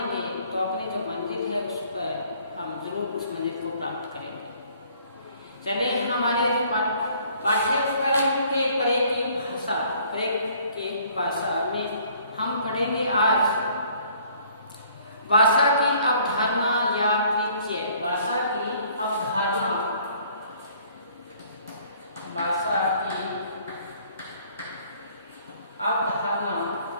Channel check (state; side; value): inverted; both; correlation -0.59